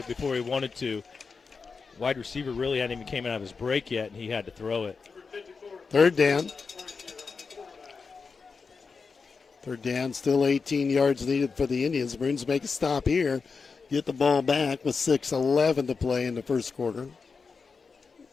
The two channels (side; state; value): right; quieter; 4.9 dB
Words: before he wanted to. Wide receiver really hadn't even came out of his break yet, and he had to throw it. 3rd down. 3rd down, still 18 yards needed for the Indians. Maroons make a stop here. get the ball back with 6:11 to play in the first quarter.